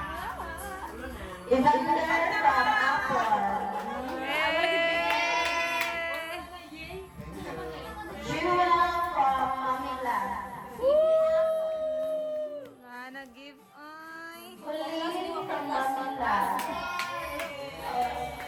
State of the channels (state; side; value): identical; both; correlation 1.00